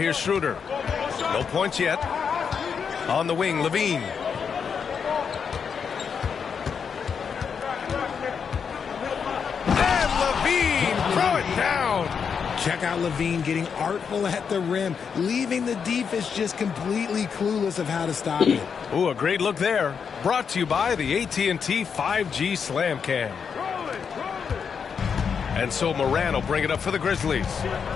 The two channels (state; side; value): quieter; right; 6.5 dB